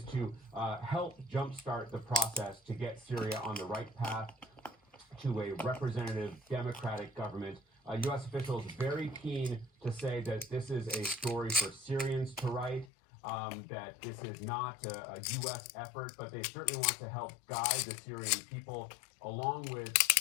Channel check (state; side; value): drops out; right; at 12.9 s